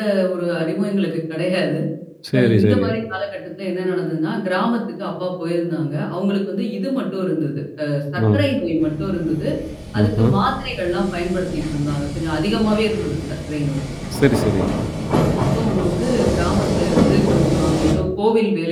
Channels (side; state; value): both; identical; correlation 1.00